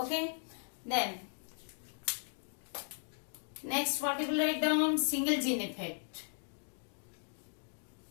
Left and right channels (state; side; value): silent; right; digital silence